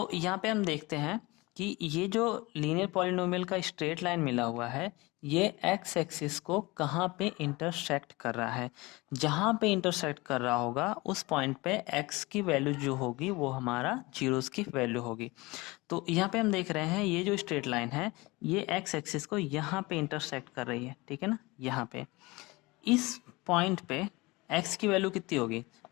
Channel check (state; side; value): quieter; right; 23.1 dB